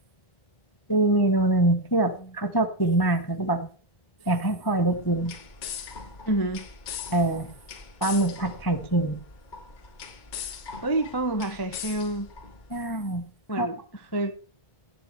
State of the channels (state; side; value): late; right; 2.2 ms